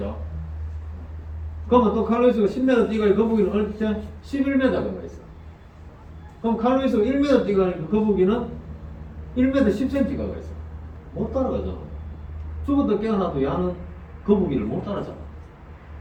그러면 또 칼루이스가 10m 뛰가 거북이는 얼핏 11m가 가 있어. 그럼 칼루이스가 1m 뛰가니까 거북이는 1m 10cm가 가 있어. 못 따라가잖아. 죽었다 깨어나도 야는 거북이를 못 따라잡아.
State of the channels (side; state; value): both; identical; correlation 1.00